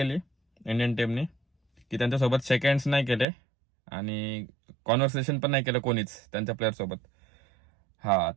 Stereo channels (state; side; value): drops out; left; at 3.2 s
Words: इंडियन टीमनी की त्यांच्यासोबत सेकंड्स नाही केले आणि कॉन्व्हर्सेशन पण नाही केलं कोणीच त्यांच्या प्लेअर सोबत. हा,